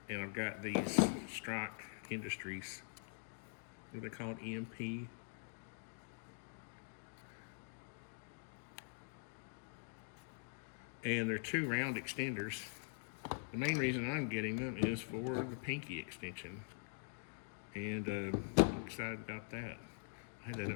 and I've got these Strike Industries. What do they call it? EMP. And they're 2 round extenders. The main reason I'm getting them is for the pinky extension. And I'm excited about that. I had that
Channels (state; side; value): silent; right; digital silence